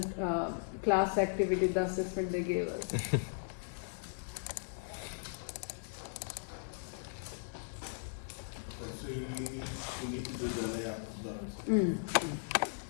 class activity, the assessment they gave us. So you need to do the layout as well.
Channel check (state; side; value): silent; right; 53 dB below the other